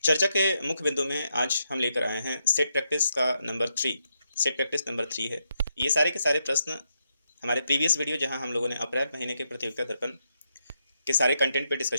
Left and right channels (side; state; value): both; inverted; correlation -0.82